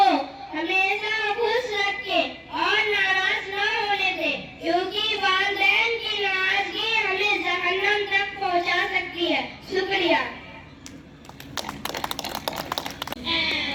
हमेशा खुश रखें और नाराज न होने दें, क्योंकि वालिदैन की नाराजगी हमें जहन्नम तक पहुंचा सकती है। शुक्रिया।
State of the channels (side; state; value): both; identical; correlation 1.00